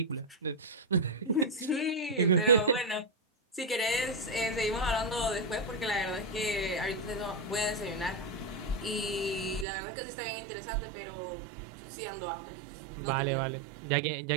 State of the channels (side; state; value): left; drops out; at 9.7 s